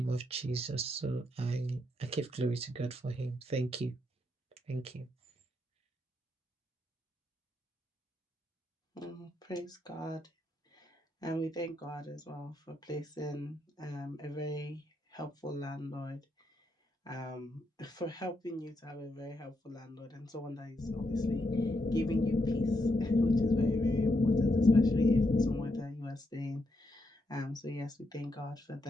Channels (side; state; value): both; normal; correlation 0.80